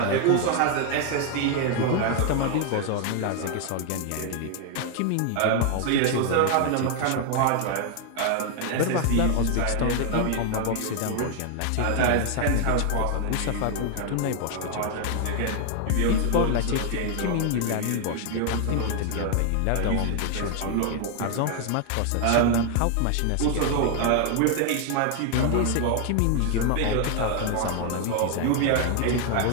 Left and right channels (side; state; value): both; different; correlation 0.00